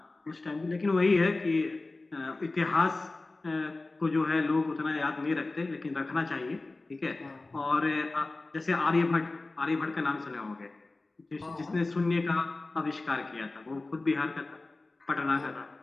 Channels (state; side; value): quieter; right; 3.2 dB